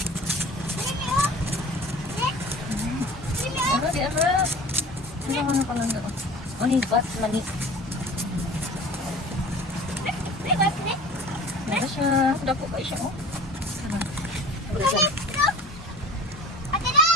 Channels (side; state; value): both; normal; correlation 0.41